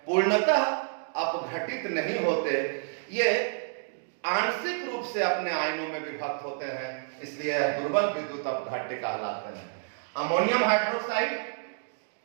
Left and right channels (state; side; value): silent; left; digital silence